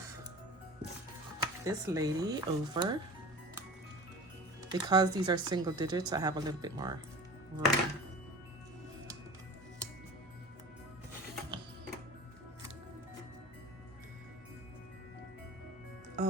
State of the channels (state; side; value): normal; both; correlation 0.38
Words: this lady over. Because these are single digits, I have a little bit more room.